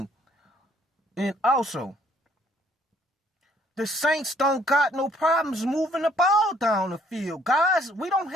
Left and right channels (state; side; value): normal; both; correlation 0.64